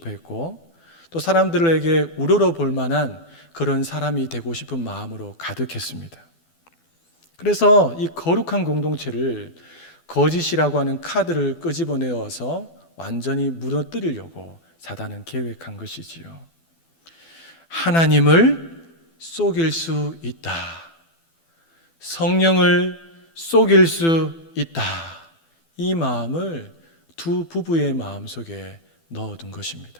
했고, 또 사람들에게 우러러 볼 만한 그런 사람이 되고 싶은 마음으로 가득했습니다. 그래서 이 거룩한 공동체를 거짓이라고 하는 카드를 끄집어내어서 완전히 무너뜨리려고 사단은 계획한 것이지요. 하나님을 속일 수 있다. 성령을 속일 수 있다. 이 마음을 두 부부의 마음속에 넣어둔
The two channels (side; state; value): right; late; 12 ms